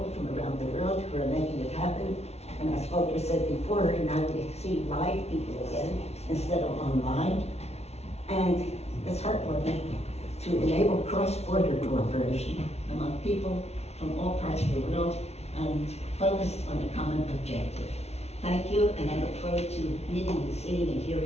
from around the world who are making it happen. And as Volker said before, now we see live people again instead of online. And it's heartwarming to enable cross-border cooperation among people from all parts of the world and focused on a common objective. Thank you, and I look forward to meeting and seeing and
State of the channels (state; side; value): late; right; 0.31 ms